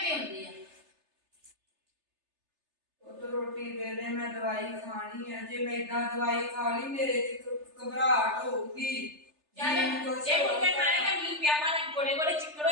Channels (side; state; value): left; late; 3.3 ms